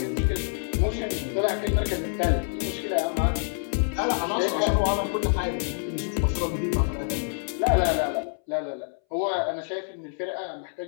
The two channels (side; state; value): right; silent; 60 dB below the other